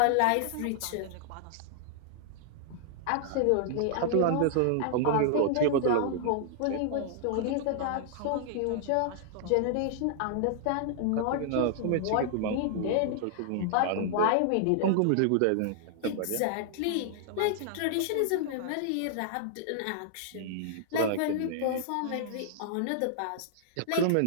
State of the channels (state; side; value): different; both; correlation -0.01